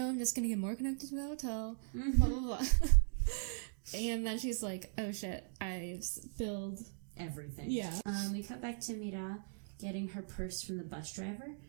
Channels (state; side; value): silent; left; digital silence